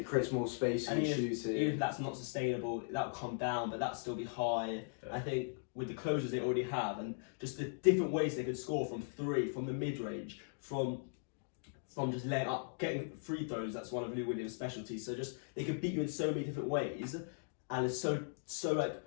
creates more space in shooting. Even if that's not sustainable, that'll come down, but that'll still be high. I think with the closures they already have and just the different ways they could score from three, from the mid range, from just laying up, getting free throws. That's one of Lou Williams' specialties. So just they could beat you in so many different ways, and it's so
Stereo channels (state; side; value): silent; right; digital silence